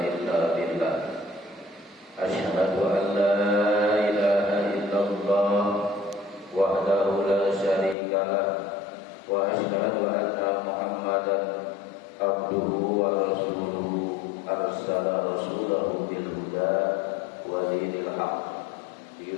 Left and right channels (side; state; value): right; drops out; at 8.0 s